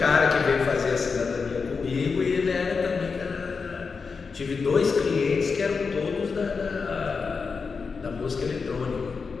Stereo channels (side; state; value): right; quieter; 5.0 dB